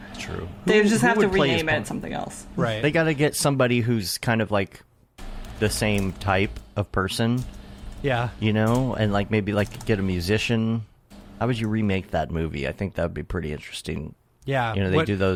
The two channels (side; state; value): both; identical; correlation 1.00